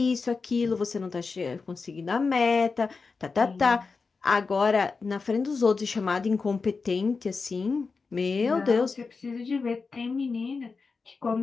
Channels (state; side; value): quieter; right; 4.6 dB